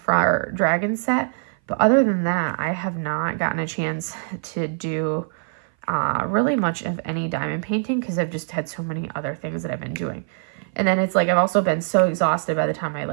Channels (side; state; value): left; silent; 58 dB below the other